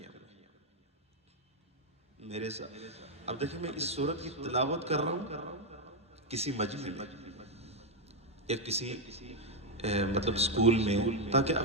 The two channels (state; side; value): normal; both; correlation 0.03